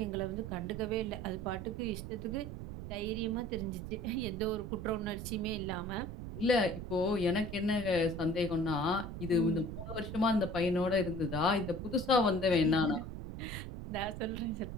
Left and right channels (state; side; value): noise; right; rumble, 8 dB below the sound